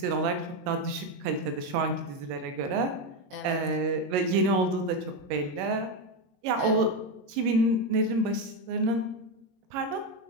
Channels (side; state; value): left; late; 22 ms